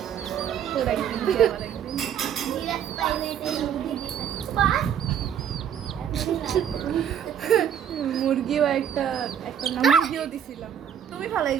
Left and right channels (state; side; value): quieter; left; 8.9 dB